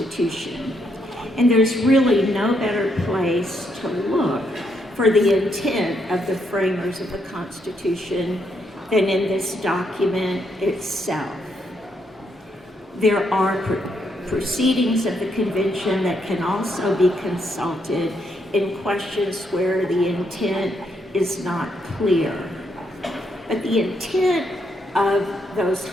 And there's really no better place to look for the intent of the framers of the Constitution than in this document itself. There are proceedings of the convention that can also be consulted in questions where the intent is not clear. But the intent of those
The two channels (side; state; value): both; normal; correlation 0.76